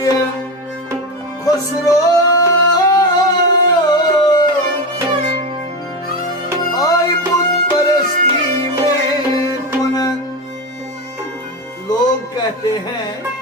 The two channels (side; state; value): both; normal; correlation 0.17